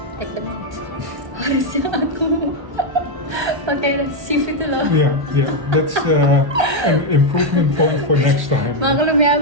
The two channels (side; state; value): left; late; 1.3 ms